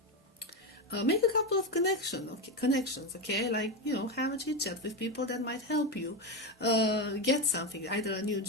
make a couple of connections, okay? Like, have a chit chat with people that might help you get something, either a new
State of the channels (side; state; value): both; normal; correlation 0.13